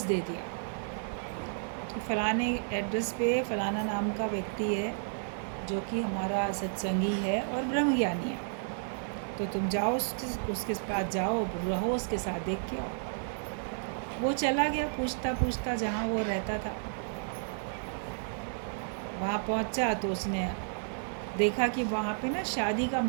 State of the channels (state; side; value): silent; left; 56 dB below the other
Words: दे दिया, तो फलाने एड्रेस पे फलाना नाम का व्यक्ति है जो कि हमारा सत्संगी है और ब्रह्मज्ञानी है, तो तुम जाओ उसके पास जाओ, रहो उसके साथ, देख के आओ। वो चला गया पूछता पूछता जहाँ वो रहता था, वहाँ पहुँचा तो उसने देखा कि वहाँ पे ना शादी का